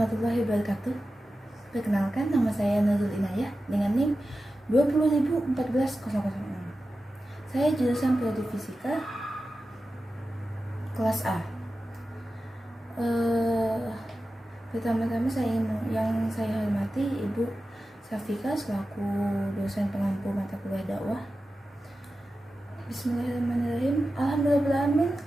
wabarakatuh. Perkenalkan, nama saya Nurul Inayah dengan NIM 20.014.006. Saya jurusan Prodi Fisika kelas A. Pertama-tama yang saya hormati Ibu Safika selaku dosen pengampu mata kuliah dakwah. Bismillahirrahmanirrahim. Alhamdulillahirrahmanirrahim.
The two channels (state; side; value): normal; both; correlation 0.93